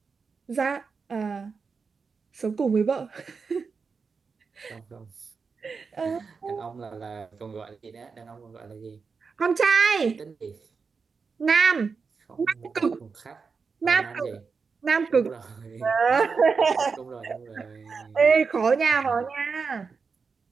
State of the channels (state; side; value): quieter; left; 5.1 dB